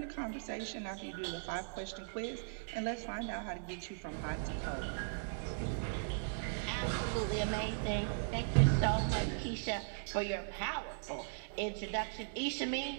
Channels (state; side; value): silent; left; digital silence